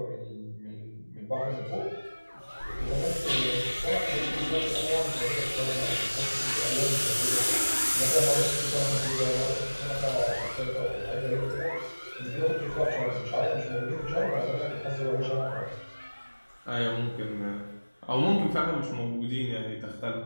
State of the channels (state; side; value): inverted; both; correlation -1.00